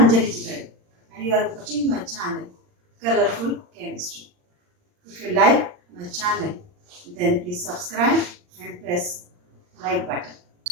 Anjali Chigai and you are watching my channel Colorful Chemistry. If you like my channel, then please subscribe and press like button.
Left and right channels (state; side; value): late; left; 39 ms